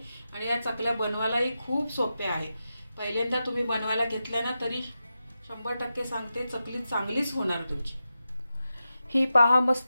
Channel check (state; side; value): inverted; both; correlation -0.91